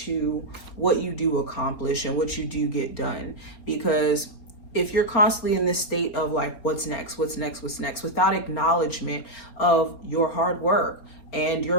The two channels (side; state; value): right; late; 4.3 ms